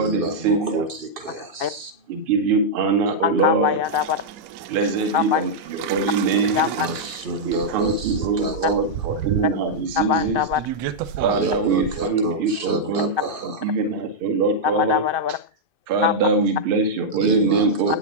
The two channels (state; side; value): late; left; 2.5 ms